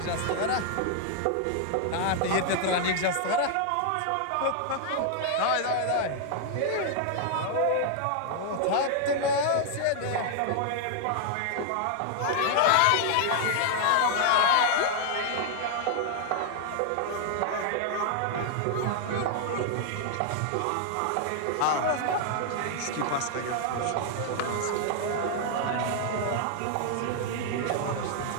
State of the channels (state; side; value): different; both; correlation -0.01